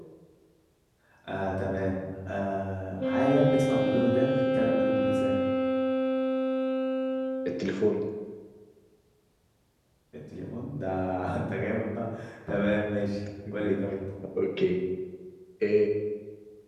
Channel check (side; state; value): both; identical; correlation 1.00